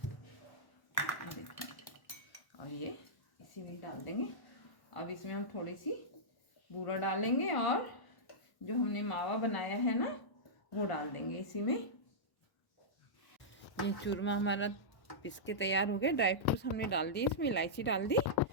और ये इसी में डाल देंगे। अब इसमें हम थोड़ी सी बूरा डालेंगे और जो हमने मावा बनाया है ना वो डाल देंगे इसी में। ये चूरमा हमारा पिस के तैयार हो गया। ड्राई फ्रूट्स हमने डाल दिए, इसमें इलायची डाल दी।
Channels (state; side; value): late; right; 1.1 ms